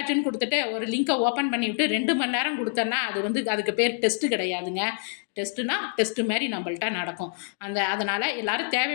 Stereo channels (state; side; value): silent; right; 58 dB below the other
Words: கொடுத்துட்டு ஒரு லிங்கை ஓப்பன் பண்ணிவிட்டு 2 மணி நேரம் கொடுத்தேன்னா அது வந்து அதுக்கு பேர் டெஸ்ட்டு கிடையாதுங்க. டெஸ்ட்டுனா டெஸ்ட்டு மாதிரி நம்மள்ட்ட நடக்கும். அதனால் எல்லோரும்